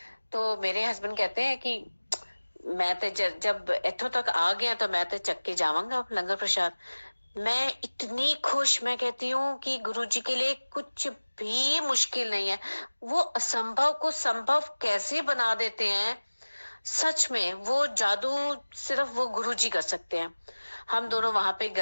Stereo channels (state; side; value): inverted; both; correlation -1.00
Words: तो मेरे हस्बैंड कहते हैं कि मैं तो जब इथों तक आ गया तो मैं तो चक्के जावांगा लंगर प्रसाद। मैं इतनी खुश, मैं कहती हूँ कि गुरुजी के लिए कुछ भी मुश्किल नहीं है। वो असंभव को संभव कैसे बना देते हैं, सच में वो जादू सिर्फ वो गुरुजी कर सकते हैं। हम दोनों वहां पे